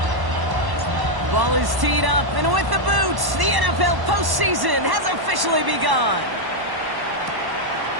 Ball is teed up, and with the boots, the NFL postseason has officially begun.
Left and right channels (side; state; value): left; late; 1.1 ms